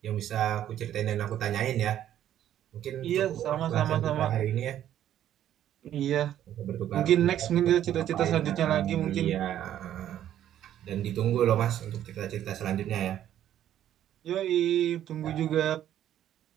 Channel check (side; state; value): left; quieter; 11.3 dB